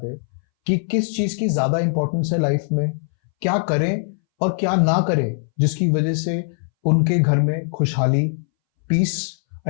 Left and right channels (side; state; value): right; silent; 63 dB below the other